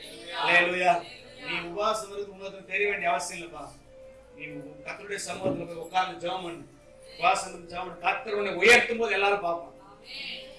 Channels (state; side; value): identical; both; correlation 1.00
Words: அல்லேலூயா. நீ உபவாசம் இருக்கு உங்களுக்கு தெரிய வேண்டிய அவசியம் இல்லப்பா. நீ கர்த்தருடைய சமூகத்துல போய் உட்கார்ந்து ஜெபம் பண்ணு. உபவாசம் இருந்து ஜெபம் பண்ணு. கர்த்தர் உன்னை உயர்த்தும் போது எல்லாரும் பார்ப்பாங்க.